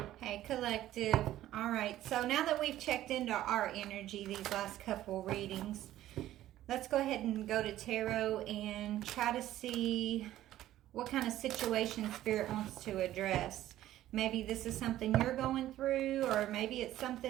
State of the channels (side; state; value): left; quieter; 13.7 dB